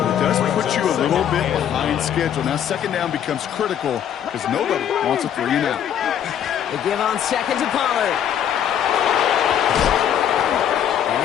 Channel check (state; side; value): quieter; right; 9.6 dB